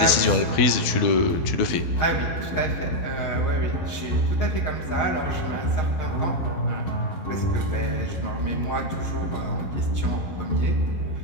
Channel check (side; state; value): right; late; 12 ms